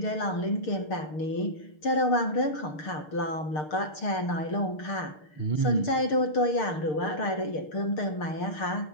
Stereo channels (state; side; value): late; right; 6.7 ms